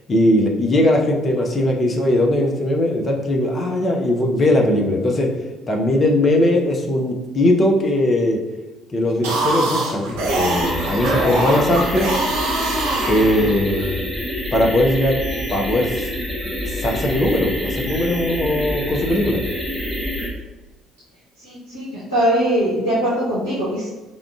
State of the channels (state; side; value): normal; both; correlation 0.67